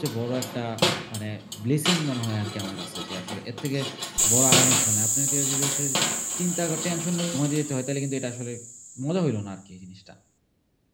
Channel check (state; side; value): identical; both; correlation 1.00